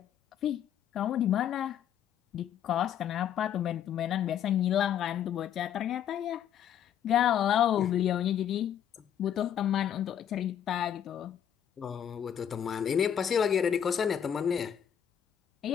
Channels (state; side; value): quieter; right; 9.5 dB